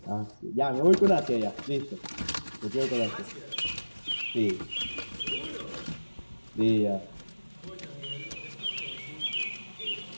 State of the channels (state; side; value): inverted; both; correlation -1.00